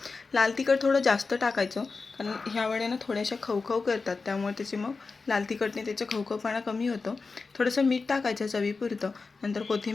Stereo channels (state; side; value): quieter; right; 4.3 dB